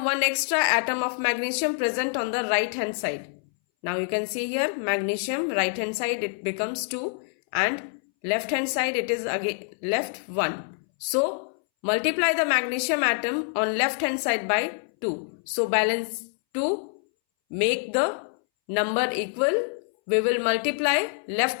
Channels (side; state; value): right; silent; 61 dB below the other